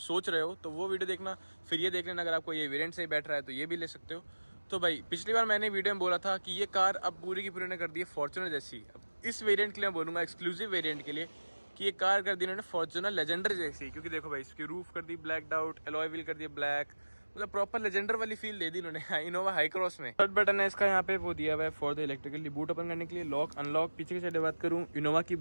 रहे हो, तो वो वीडियो देखना, फिर ये देख लेना। अगर आपको ये वेरिएंट से बैठ रहा है तो ये भी ले सकते हो। तो भाई पिछली बार मैंने वीडियो में बोला था कि ये कार अब पूरी की पूरी ने कर दी है फॉर्च्यूनर जैसी। अब इस वेरिएंट के लिए मैं बोलूँगा, एक्सक्लूसिव वेरिएंट के लिए, कि ये कार कर दी इन्होंने फॉर्च्यूनर लेजेंडर जैसी। क्योंकि देखो भाई, इसकी रूफ कर दी ब्लैक आउट, एलॉय व्हील कर दिया ब्लैक, मतलब प्रॉपर लेजेंडर वाली फील दे दी इन्होंने इनोवा हाई क्रॉस में। थर्ड बटन है इसका, यहाँ पे वो दिया हुआ है for the electrically boot open करने के लिए। लॉक अनलॉक, पीछे की साइड बात करूँ, इनोवा की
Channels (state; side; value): inverted; both; correlation -1.00